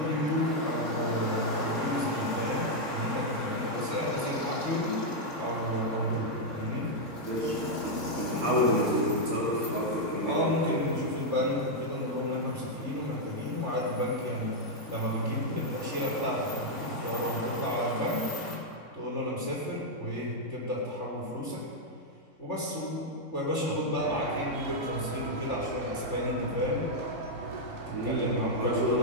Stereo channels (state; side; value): late; right; 3.6 ms